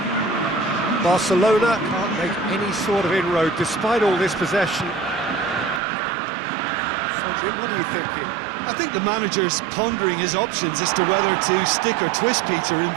Barcelona can't make any sort of inroad despite all this possession. So, Jim, what are you thinking? I think the manager's pondering his options as to whether to stick or twist, Peter, in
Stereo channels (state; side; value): drops out; left; at 5.8 s